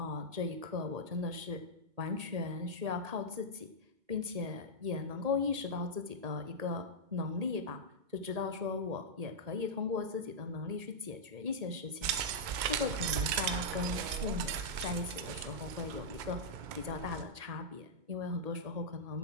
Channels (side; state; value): left; late; 2.2 ms